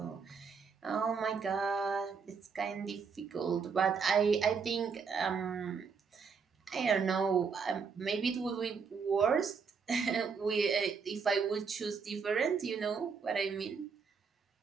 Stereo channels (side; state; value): left; quieter; 5.7 dB